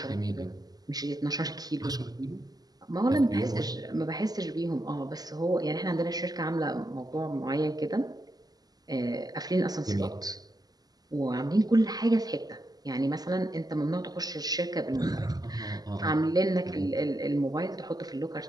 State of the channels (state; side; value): late; left; 0.19 ms